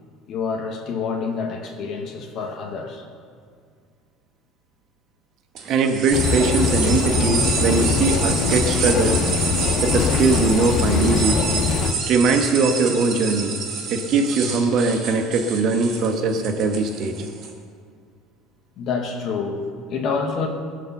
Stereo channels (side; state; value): both; normal; correlation 0.47